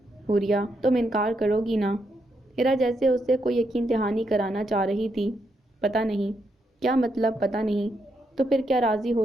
حوریہ، تم انکار کرو گی نا؟ ہیرا جیسے اس سے کوئی یقین دہانی کرانا چاہ رہی تھی۔ پتہ نہیں۔ کیا مطلب پتہ نہیں؟ تو پھر کیا راضی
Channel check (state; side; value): normal; both; correlation 0.80